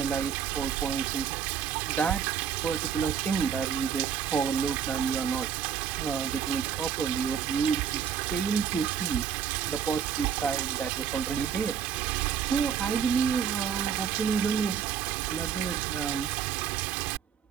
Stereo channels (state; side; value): quieter; left; 7.9 dB